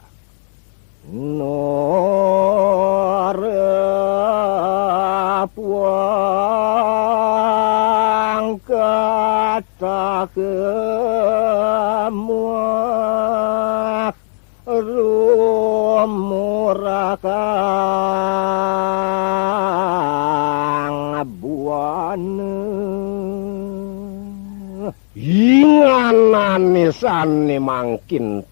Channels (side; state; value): right; silent; digital silence